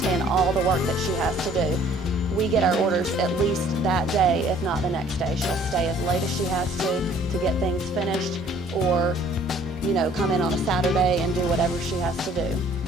all the work that she has to do. We get our orders at least that day, if not the next day. She'll stay as late as she has to get things finished, or come in on a Saturday and do whatever she has to do.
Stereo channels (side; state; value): both; normal; correlation 0.56